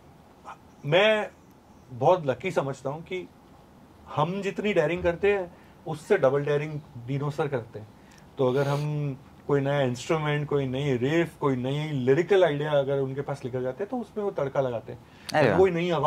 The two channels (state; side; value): identical; both; correlation 1.00